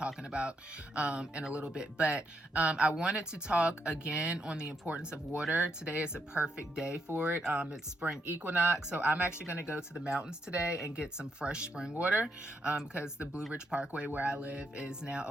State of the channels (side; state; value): both; normal; correlation 0.78